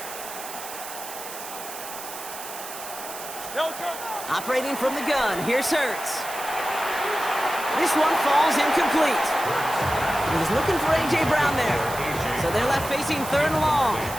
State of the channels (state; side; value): noise; right; hiss, 11 dB below the sound